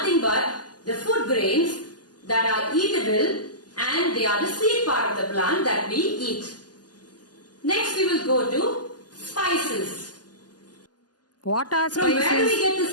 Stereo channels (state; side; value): late; right; 0.69 ms